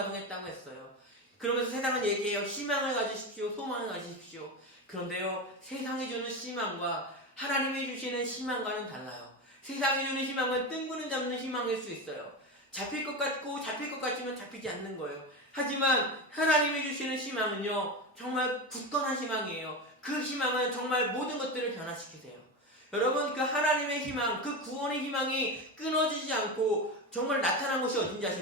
했어요. 그러면서 세상은 얘기해요. 희망을 가지십시오. 소망을 가지십시오. 그런데요, 세상이 주는 희망과 하나님이 주시는 희망과는 달라요. 세상이 주는 희망은 뜬구름 잡는 희망일 수 있어요. 잡힐 것 같고 잡힐 것 같지만 잡히지 않는 거예요. 하지만 하나님이 주시는 희망은요, 정말 굳건한 희망이에요. 그 희망은 정말 모든 것들을 변화시키세요. 여러분, 그 하나님의 희망, 그 구원의 희망이 끊어지지 않고 정말 나타난 것이 어딘지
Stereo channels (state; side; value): normal; both; correlation 0.20